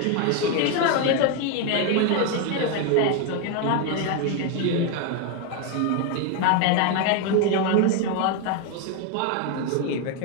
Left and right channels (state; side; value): different; both; correlation 0.01